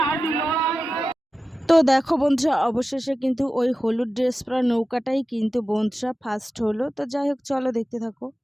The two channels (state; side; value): normal; both; correlation 0.94